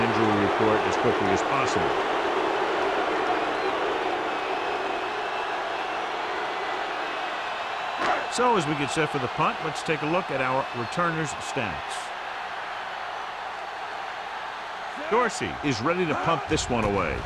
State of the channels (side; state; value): both; identical; correlation 1.00